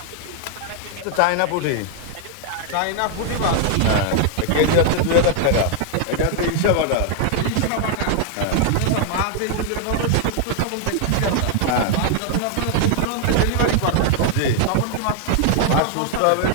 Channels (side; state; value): both; different; correlation 0.00